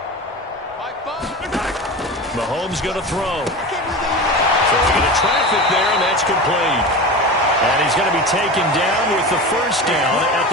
Mahomes going to throw. Throwing into traffic there, and that's complete. And he's going to be taken down with the first down at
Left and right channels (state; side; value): normal; both; correlation 0.28